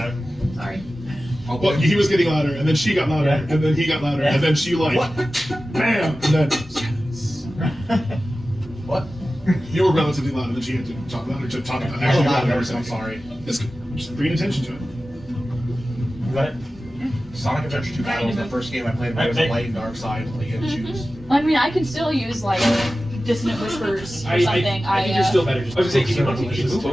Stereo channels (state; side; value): normal; both; correlation 0.95